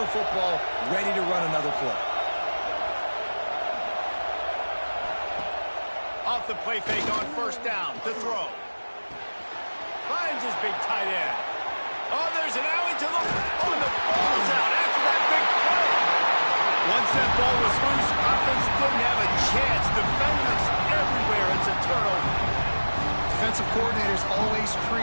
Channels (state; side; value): inverted; both; correlation -1.00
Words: the football, ready to run another play. Off the play fake on 1st down to throw. Finds his big tight end. Oh, there's an alley to the... Oh, the ball's out after that big play. Once that ball was loose, offense didn't have a chance. Defenders everywhere. It's a turnover. Defensive coordinators always